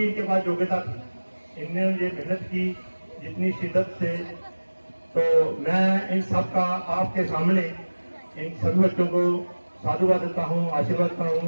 पास योग्यता थी, इनने ये मेहनत की जितनी शिद्दत से, तो मैं इन सब का आपके सामने इन सभी बच्चों को साधुवाद देता हूँ, आशीर्वाद करता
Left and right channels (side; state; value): both; inverted; correlation -1.00